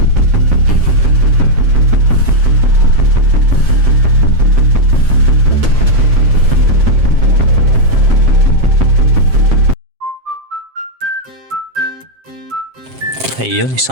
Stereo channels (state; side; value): late; left; 7.5 ms